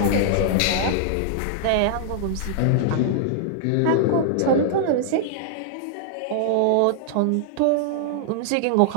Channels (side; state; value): both; different; correlation -0.01